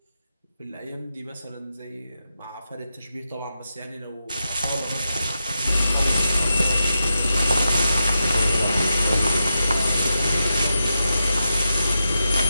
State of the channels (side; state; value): both; inverted; correlation -0.88